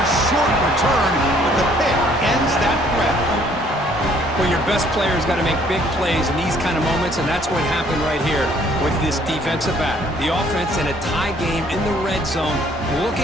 short return, but the pick ends that threat. Well, your best player's got to make big plays in these kind of moments, and that's what happened right here with this defensive back. The offense in a tie game in the red zone,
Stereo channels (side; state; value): both; normal; correlation 0.61